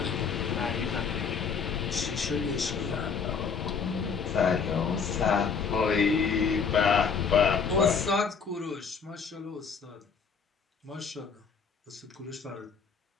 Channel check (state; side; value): quieter; right; 5.9 dB